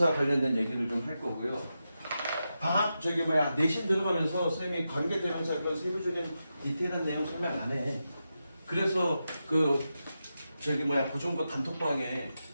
관련된 얘기를 좀 할 거고요. 내신 들어가면서 쌤이 관계 대명사 그런 세부적인 디테일한 내용 설명 안 해. 그래서 고정고 단톡방에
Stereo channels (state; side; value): inverted; both; correlation -0.89